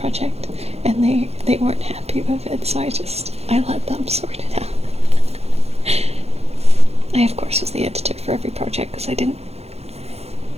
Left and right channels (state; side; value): late; left; 0.30 ms